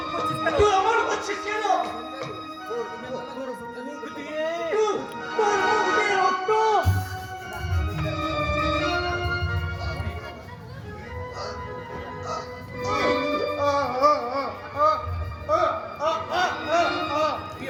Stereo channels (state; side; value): identical; both; correlation 1.00